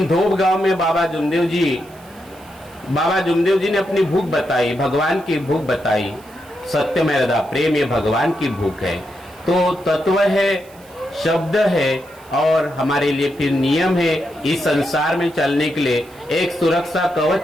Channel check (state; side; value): noise; right; hiss, 26 dB below the sound